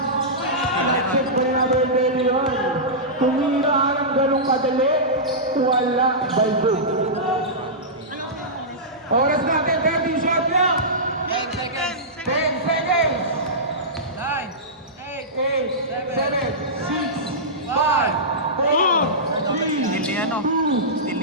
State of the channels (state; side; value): normal; both; correlation -0.15